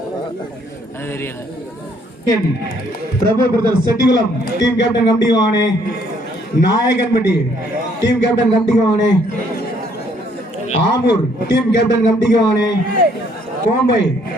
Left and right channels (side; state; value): both; normal; correlation 0.65